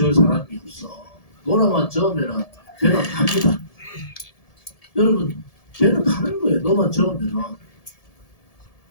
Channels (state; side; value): late; right; 1.7 ms